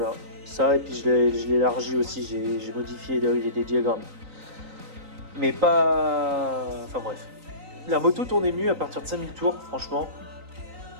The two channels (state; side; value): late; left; 3.9 ms